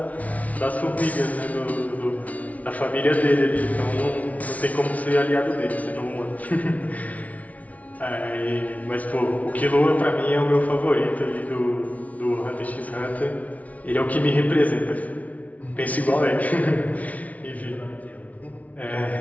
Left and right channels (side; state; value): right; late; 0.069 ms